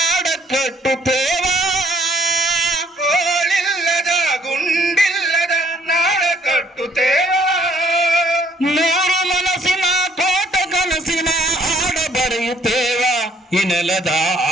ಕಟ್ಟುತ್ತೇವ. ಗೋಳಿಲ್ಲದ ಗುಂಡಿಲ್ಲದ ನಾಡ ಕಟ್ಟುತ್ತೇವ. ನೂರು ಮನಸ್ಸಿನ ಕೋಟ ಕನಸಿನ ಹಾಡ ಬರೆಯುತ್ತೇವ, ಈ ನೆಲದ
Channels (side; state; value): both; normal; correlation 0.64